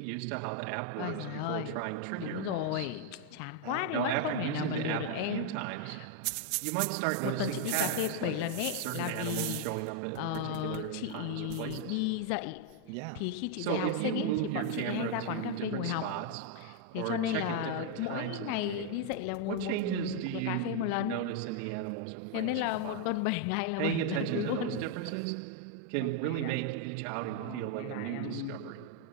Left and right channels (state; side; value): different; both; correlation 0.00